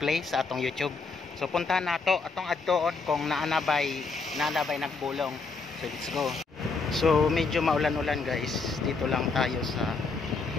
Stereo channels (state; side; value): quieter; right; 4.3 dB